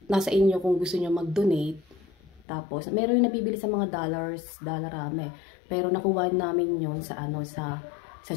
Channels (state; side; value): drops out; right; at 2.5 s